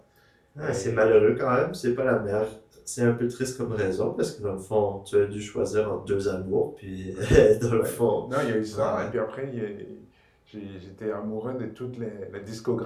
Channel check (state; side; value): identical; both; correlation 1.00